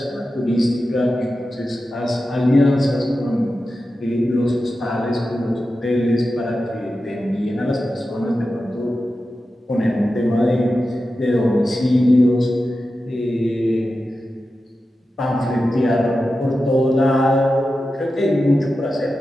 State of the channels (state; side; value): normal; both; correlation 0.92